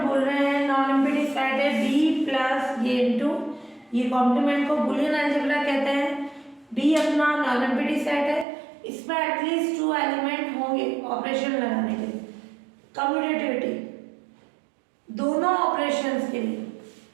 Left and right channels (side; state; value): left; drops out; at 8.5 s